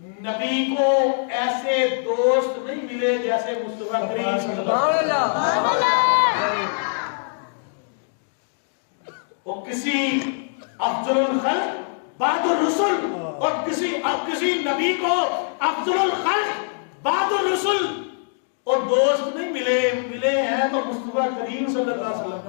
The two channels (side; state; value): right; silent; digital silence